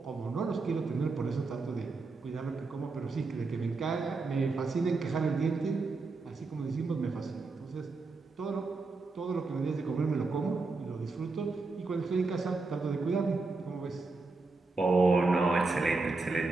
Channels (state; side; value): quieter; left; 3.8 dB